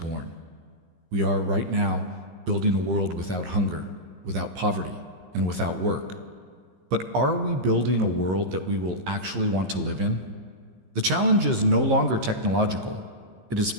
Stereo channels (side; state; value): left; late; 15 ms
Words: We are right now building a world without hunger, without poverty, and without work. But are we building a world that we will actually want to live in? The challenge is no longer technological, it